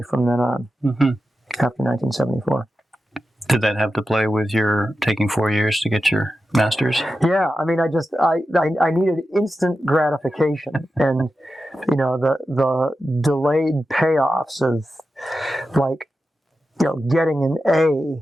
from then on, after 1974. Did that have to play with your taking 4 years to get your Masters? Yeah, I mean, I needed instant gratification, and the delayed payoffs of, like, getting an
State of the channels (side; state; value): both; normal; correlation 0.91